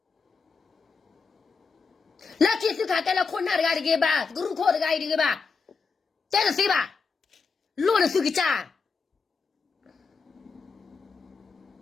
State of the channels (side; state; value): right; quieter; 5.0 dB